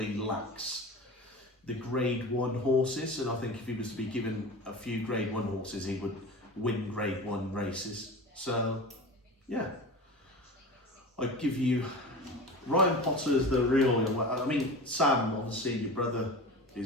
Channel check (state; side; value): normal; both; correlation 0.32